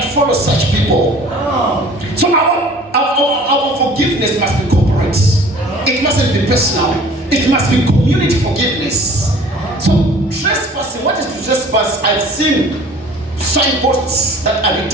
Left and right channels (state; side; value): normal; both; correlation 0.48